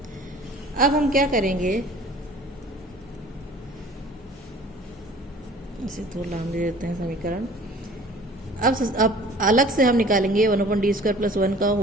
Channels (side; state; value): both; normal; correlation 0.48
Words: अब हम क्या करेंगे, इसे थोड़ा लाम दे देते हैं समीकरण। अब अलग से हम निकालेंगे 1/d² + 1 का